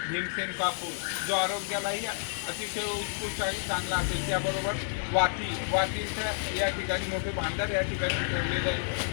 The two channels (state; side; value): silent; right; digital silence